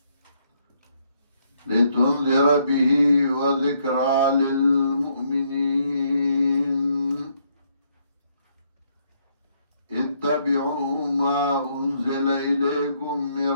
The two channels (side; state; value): both; inverted; correlation -0.72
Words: لتنذر به وذكرى للمؤمنين اتبعوا ما أنزل إليكم من